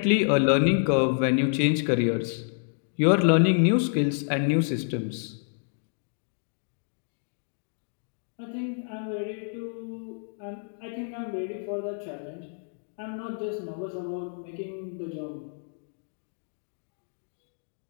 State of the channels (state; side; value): silent; right; digital silence